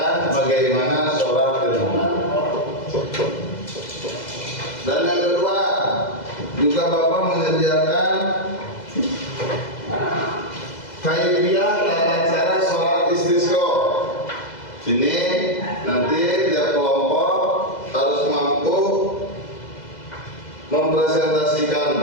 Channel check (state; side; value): late; right; 2.0 ms